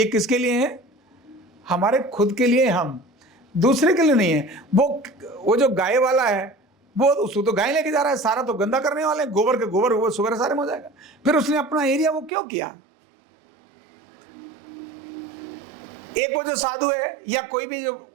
किसके लिए है? हमारे खुद के लिए। हम दूसरे के लिए नहीं है। वो जो गाय वाला है वो उसको तो गाय लेके जा रहा है, सारा तो गंदा करने वाले हैं, गोबर के गोबर वो सुबह सारे में हो जाएगा। फिर उसने अपना एरिया वो क्यों किया? एक वो जो साधु है या कोई भी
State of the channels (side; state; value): left; drops out; at 12.3 s